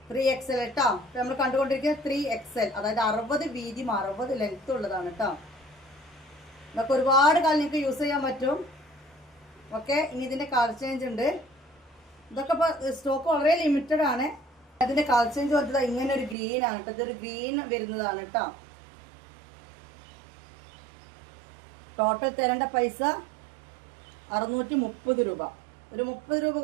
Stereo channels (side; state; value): left; drops out; at 16.4 s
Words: 3XL കേട്ടോ. നമ്മൾ കണ്ടുകൊണ്ടിരിക്കുന്നത് 3XL, അതായത് 60 വീതിയും 60 ലെങ്ത്തും ഉള്ളതാണ് കേട്ടോ. ഇതൊക്കെ ഒരുപാട് കാലം നിങ്ങൾക്ക് യൂസ് ചെയ്യാൻ പറ്റും. ഓക്കെ, ഇനി ഇതിൻ്റെ കളർ ചേഞ്ച് ഉണ്ട്. ഇതൊക്കെ ഇപ്പോൾ സ്റ്റോക്ക് വളരെ ലിമിറ്റഡ് ആണ്. അതിൻ്റെ കളർ ചേഞ്ച് വന്നത് ഇങ്ങനെ ഒരു ഗ്രീൻ ആണ് കേട്ടോ. ഇതൊരു ഗ്രീൻ വരുന്നതാണ് കേട്ടോ. ടോട്ടൽ തരേണ്ട പൈസ 630 രൂപ. ഒരു 30 രൂപ